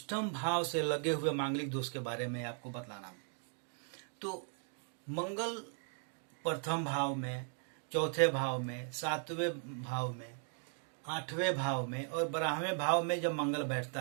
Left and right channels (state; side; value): silent; left; 53 dB below the other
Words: भाव से लगे हुए मांगलिक दोष के बारे में आपको बतलाना हूँ। तो मंगल प्रथम भाव में, चौथे भाव में, 7वें भाव में, 8वें भाव में और 12वें भाव में जब मंगल